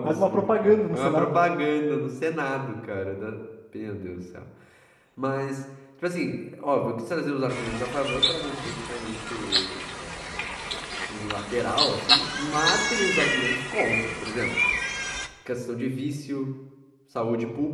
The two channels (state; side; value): identical; both; correlation 1.00